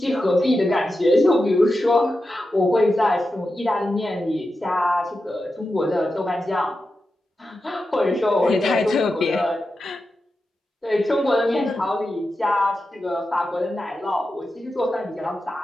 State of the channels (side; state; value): both; normal; correlation 0.90